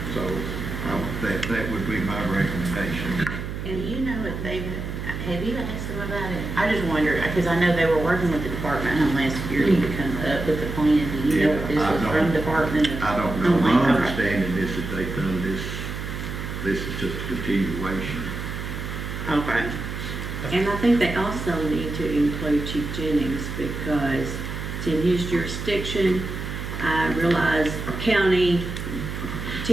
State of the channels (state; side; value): noise; right; hum, 6 dB below the sound